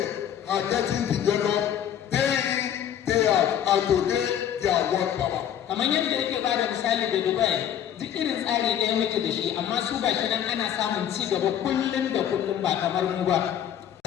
are getting developed day in, day out, and today they are world power. Kamar yadda yake ba da misali da Dubai, duk irin tsari ɗaya muke da shi, amma su ba shi nan ana samun ci gaba kullum da kullum ba kamar mu ba.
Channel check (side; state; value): right; quieter; 9.9 dB